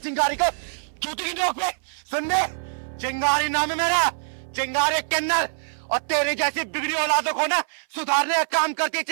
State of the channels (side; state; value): left; silent; 57 dB below the other